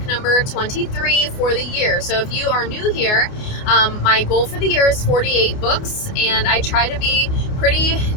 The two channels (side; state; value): right; late; 29 ms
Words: number 23 for the year. So if you are new here, my goal for the year is 48 books, and I try to be pretty